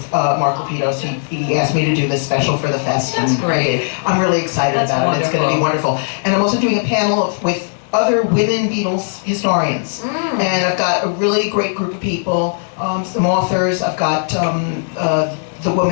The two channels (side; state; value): right; silent; 68 dB below the other